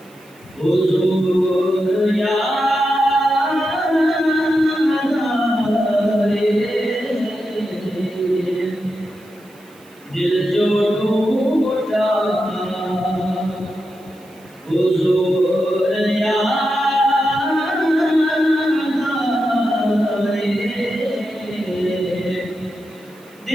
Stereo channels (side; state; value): right; noise; hiss, 29 dB below the sound